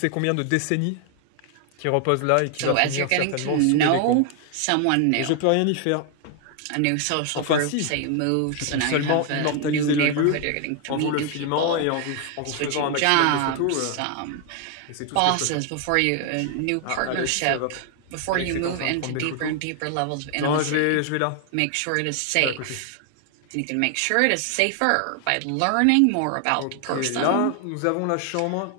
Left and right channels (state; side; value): different; both; correlation 0.00